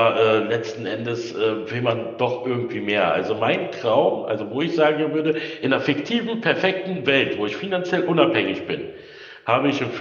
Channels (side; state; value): both; identical; correlation 1.00